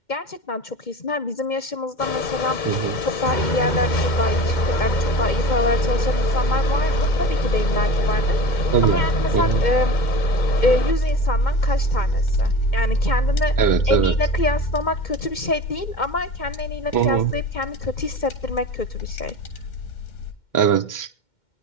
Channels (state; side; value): late; right; 2.1 ms